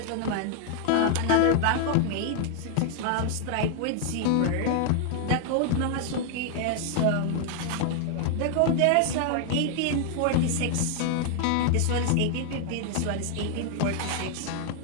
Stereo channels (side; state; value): both; different; correlation 0.00